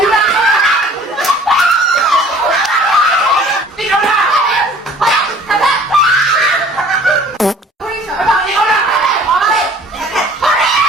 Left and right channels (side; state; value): both; normal; correlation 0.51